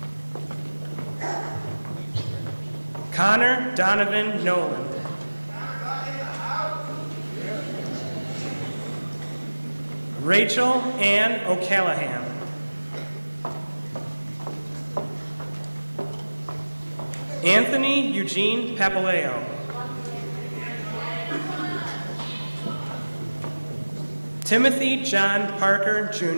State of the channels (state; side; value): inverted; both; correlation -1.00